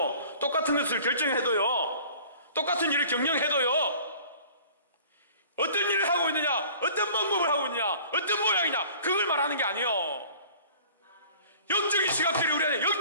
똑같은 것을 결정해도요, 똑같은 일을 경영해도요, 어떤 일을 하고 있느냐, 어떤 방법을 하고 있느냐, 어떤 모양이냐, 그걸 말하는 게 아니에요. 영적인 시각들이 우리 안에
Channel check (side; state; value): both; inverted; correlation -0.48